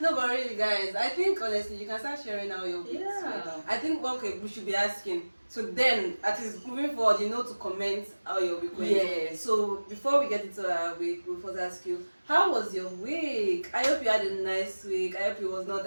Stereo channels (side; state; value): both; inverted; correlation -1.00